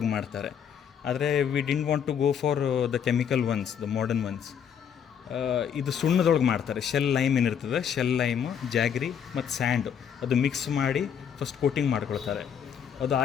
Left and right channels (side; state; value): right; quieter; 8.0 dB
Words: ಮಾಡ್ತಾರೆ, ಆದರೆ we didn't want to go for the chemical ones, the modern ones. ಇದು ಸುಣ್ಣದೊಳಗೆ ಮಾಡ್ತಾರೆ. ಶೆಲ್ ಲೈಮ್ ಏನಿರ್ತದೆ, ಶೆಲ್ ಲೈಮು, ಜಾಗ್ರಿ ಮತ್ತು ಸ್ಯಾಂಡು ಅದು ಮಿಕ್ಸ್ ಮಾಡಿ ಫಸ್ಟ್ ಕೋಟಿಂಗ್ ಮಾಡ್ಕೊಳ್ತಾರೆ. ಅದು